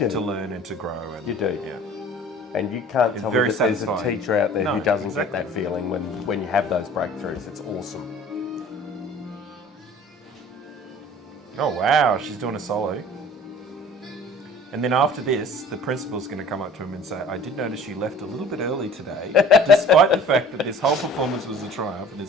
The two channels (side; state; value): both; normal; correlation 0.47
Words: to learn and to grow. And, You do. Yeah. And you can't It's tell me very that there's a satisfying. teacher out there No, who doesn't exactly. get that feeling when you have those breakthroughs. It's awesome. Oh wow, she's doing a solo. And then after this, the principal's going to come up to him and say, I did notice you left a little bit early today, despite the fact that this whole performance was a triumph and